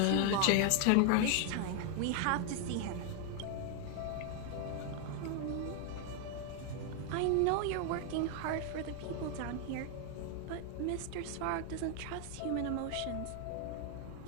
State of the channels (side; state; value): both; different; correlation 0.00